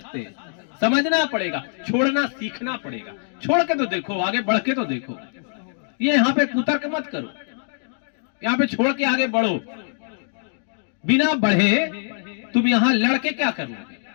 हैं, समझना पड़ेगा, छोड़ना सीखना पड़ेगा। छोड़ के तो देखो, आगे बढ़ के तो देखो। ये यहाँ पे कुतर्क मत करो, यहाँ पे छोड़ के आगे बढ़ो। बिना बढ़े तुम यहाँ लड़के क्या करोगे?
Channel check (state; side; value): silent; right; digital silence